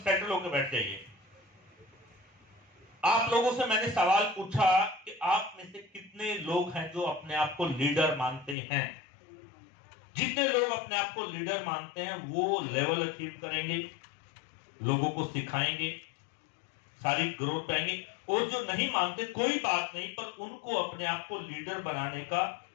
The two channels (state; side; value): drops out; right; at 8.6 s